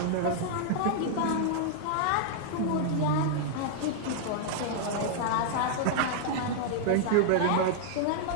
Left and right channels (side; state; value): both; different; correlation -0.01